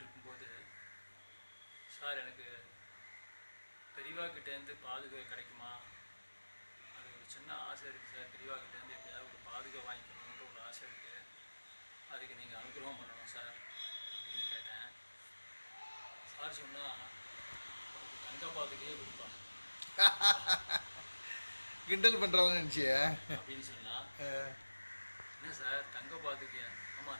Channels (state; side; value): inverted; both; correlation -1.00